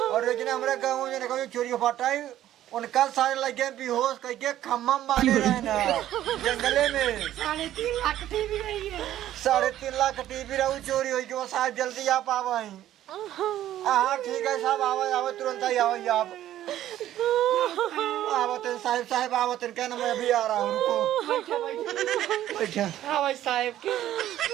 और लेकिन हमारे गाँव में चोरी हो पाटा है, उनका सारे लगे बेहोश करके खम्मा मारे रहे ना जंगले में। 3.5 लाख टीवी रही है। 3.5 लाख टीवी रहू चोरी हुई, वो साहब जल्दी आप आवाई। हाँ ठीक है साहब, आवा तुरंत ही आवाई आप। आवतन साहब आवतन, क्या ना मैं अभी आ रहा हूँ, रुको। बैठा हाँ भाई साहब के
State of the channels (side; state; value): left; quieter; 12.7 dB